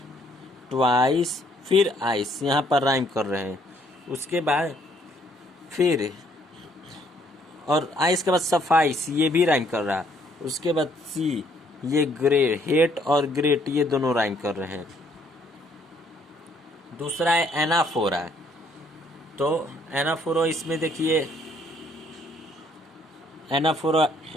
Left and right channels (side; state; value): both; normal; correlation 0.65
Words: ट्वाइस फिर आइस, यहाँ पर राइम कर रहे हैं। उसके बाद फिर और आइस के बाद सफाइस, ये भी राइम कर रहा है। उसके बाद सी, ये ग्रेट, हेट और ग्रेट ये दोनों राइम कर रहे हैं। दूसरा है एनाफोरा। तो एनाफोरा, इसमें देखिए एनाफोरा,